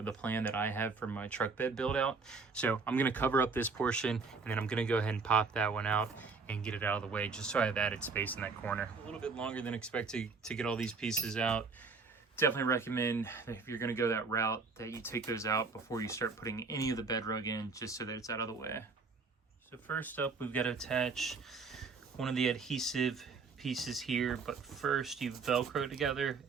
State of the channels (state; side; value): quieter; left; 4.5 dB